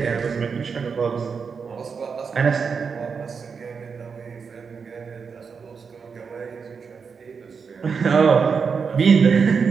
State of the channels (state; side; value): quieter; left; 5.7 dB